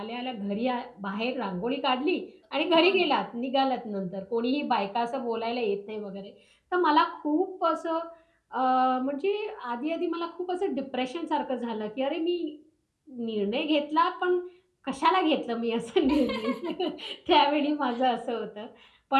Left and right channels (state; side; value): identical; both; correlation 1.00